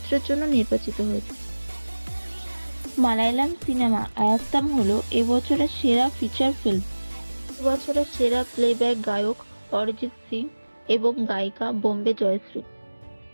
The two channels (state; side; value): inverted; both; correlation -1.00